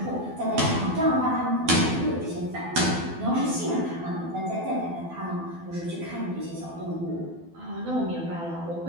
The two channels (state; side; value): late; left; 12 ms